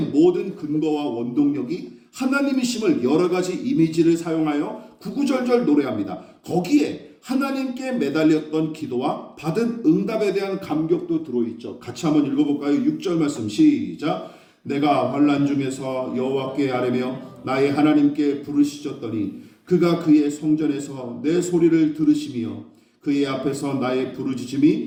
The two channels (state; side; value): identical; both; correlation 1.00